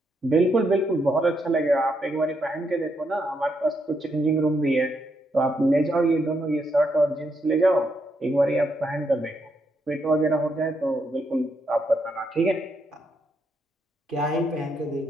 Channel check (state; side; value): normal; both; correlation 0.79